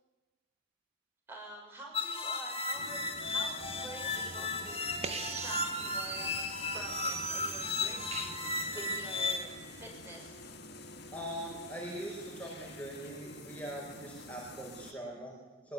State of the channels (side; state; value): both; normal; correlation -0.08